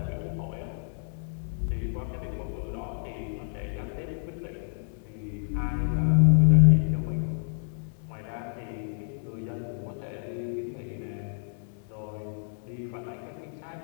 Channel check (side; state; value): right; silent; digital silence